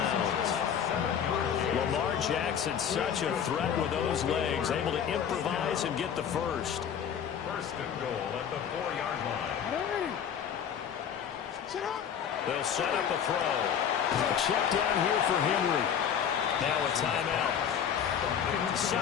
Lamar Jackson, such a threat with those legs, able to improvise and get the first. First and goal at the 4-yard line. They'll set up a throw. A check down here for Henry. Now a timeout.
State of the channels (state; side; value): quieter; right; 8.3 dB